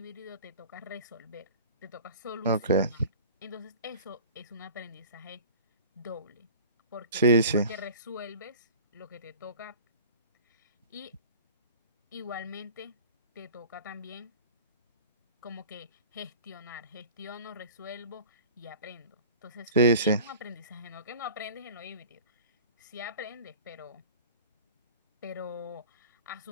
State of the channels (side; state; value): both; inverted; correlation -0.43